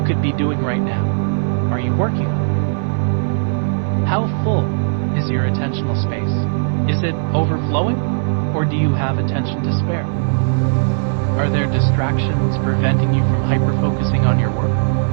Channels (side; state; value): left; silent; digital silence